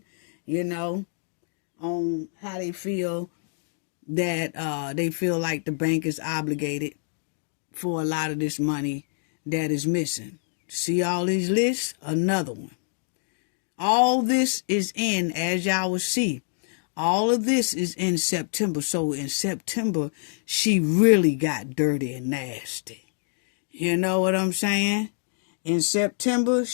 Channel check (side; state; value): right; silent; digital silence